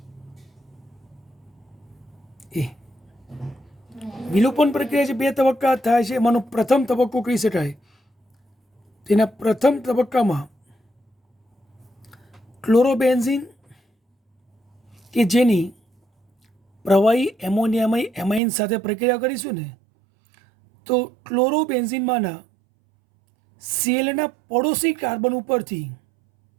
વિલોપન પ્રક્રિયા જે 2 તબક્કા થાય છે એમાંનો પ્રથમ તબક્કો કહી શકાય. તેના પ્રથમ તબક્કામાં ક્લોરોબેન્ઝીન કે જેની પ્રવાહી એમોનિયામય એમાઇન સાથે પ્રક્રિયા કરીશું ને, તો ક્લોરોબેન્ઝીનમાંના સેલના પડોશી કાર્બન ઉપરથી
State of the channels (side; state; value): left; drops out; at 18.4 s